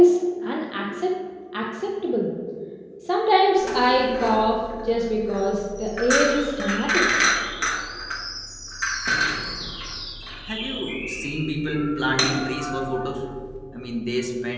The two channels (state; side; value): identical; both; correlation 1.00